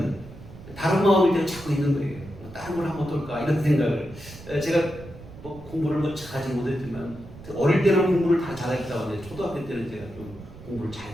다른 마음일 때는 자꾸 있는 거예요. 다른 걸 하면 어떨까 이런 생각을. 제가 뭐 공부를 뭐 잘하지 못했지만 어릴 때는 공부를 다 잘했다고 하는데 초등학교 때는 제가 좀 공부를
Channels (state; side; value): noise; right; rumble, 16 dB below the sound